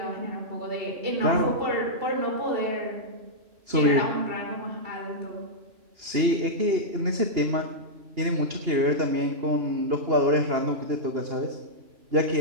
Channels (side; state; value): left; late; 2.8 ms